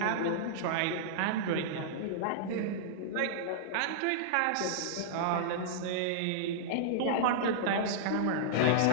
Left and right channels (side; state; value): both; different; correlation -0.02